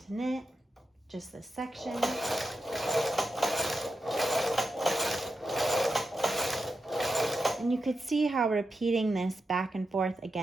knit just this section. And you could see how repeating this back and forth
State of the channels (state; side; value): normal; both; correlation 0.88